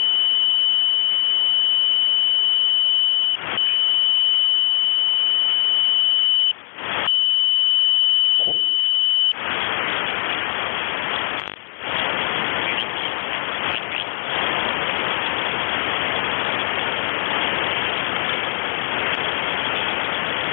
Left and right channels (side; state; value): right; silent; digital silence